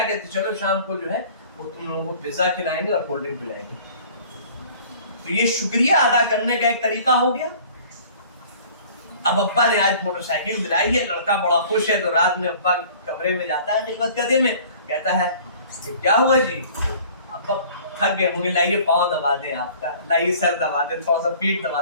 کہتے ہیں؟ چلو شام کو جو ہے وہ تم لوگوں کو پیزا کھلائیں گے اور کولڈ ڈرنک پلائیں گے. تو یہ شکریہ ادا کرنے کا ایک طریقہ ہو گیا. اب ابا نے آج موٹر سائیکل دلائی ہے، لڑکا بڑا خوش ہے تو رات میں ابا کمرے میں جاتا ہے خدمت کدے میں، کہتا ہے کیا ہوا جی؟ ابا تھک گئے ہوں گے، لائیے پاؤں دبا دیں آپ کا، لائیے سر دبا دیں، تھوڑا سا پیٹ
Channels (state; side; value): inverted; both; correlation -0.49